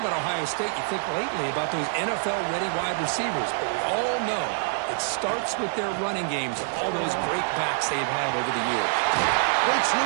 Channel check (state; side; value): silent; left; digital silence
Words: Ohio State, you think lately about those NFL-ready wide receivers. But we all know it starts with their running games and all those great backs they've had over the years. Breaks